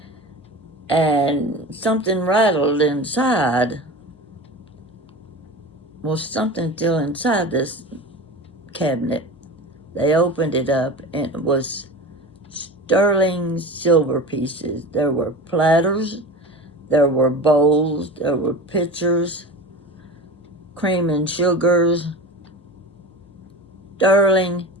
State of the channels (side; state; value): both; normal; correlation 0.31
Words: and something rattled inside. Well, something still inside this cabinet. They opened it up, and it was sterling silver pieces. There were platters, there were bowls, there were pitchers, cream and sugars, sterling